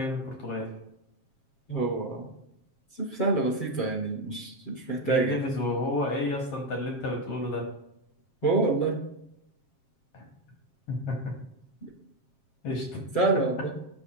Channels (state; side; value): late; right; 7.5 ms